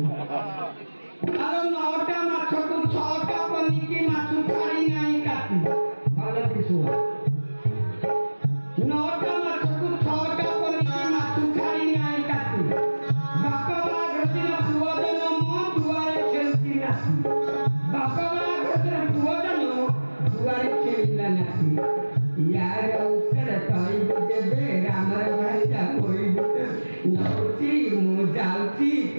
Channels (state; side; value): inverted; both; correlation -1.00